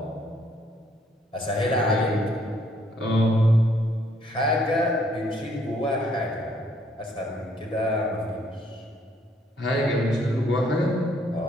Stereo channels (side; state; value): both; normal; correlation 0.67